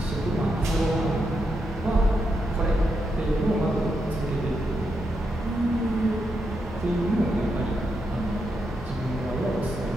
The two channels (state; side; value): normal; both; correlation 0.83